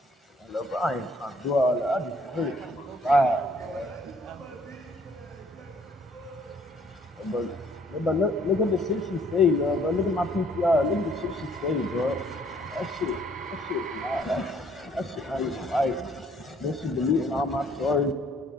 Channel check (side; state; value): both; normal; correlation 0.61